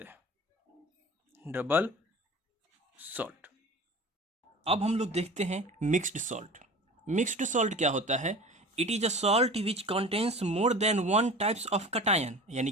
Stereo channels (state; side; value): normal; both; correlation 0.38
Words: हैं, डबल सॉल्ट। अब हम लोग देखते हैं मिक्स्ड सॉल्ट। मिक्स्ड सॉल्ट क्या होता है, it is a salt which contains more than one types of cation, यानी